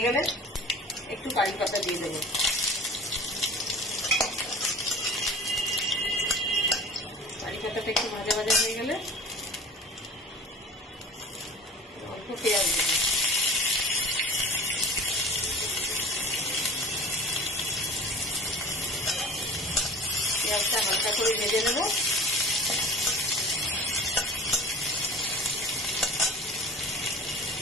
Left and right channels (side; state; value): both; normal; correlation 0.40